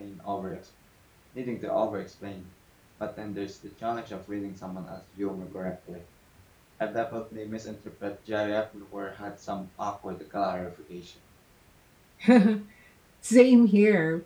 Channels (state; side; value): identical; both; correlation 1.00